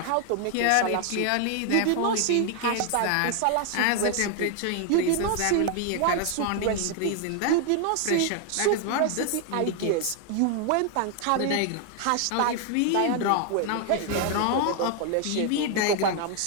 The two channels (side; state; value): both; different; correlation 0.00